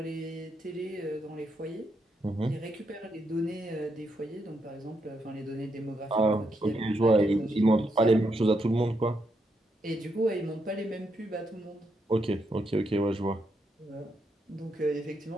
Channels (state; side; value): normal; both; correlation 0.80